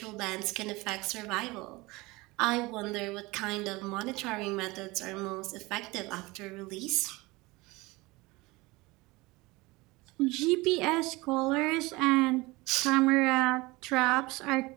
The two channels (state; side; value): quieter; left; 22.5 dB